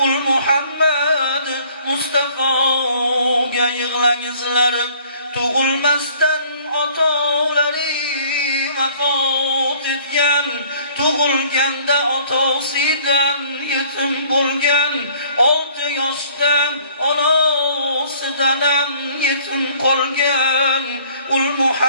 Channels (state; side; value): inverted; both; correlation -0.56